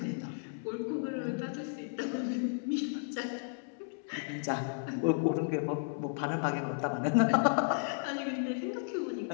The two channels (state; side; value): silent; right; digital silence